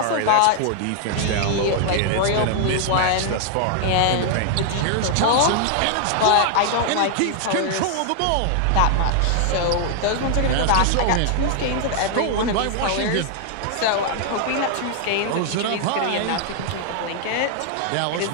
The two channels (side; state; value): both; different; correlation 0.00